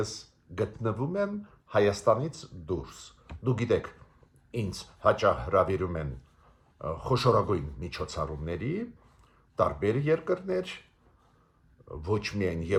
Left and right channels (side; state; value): both; identical; correlation 1.00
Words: գտնվում եմ Հայաստանից դուրս, դու գիտեք, ինձ հաճախ հրավիրում են խոշորագույն միջոցառումների, տարբեր երկրներ, ոչ միայն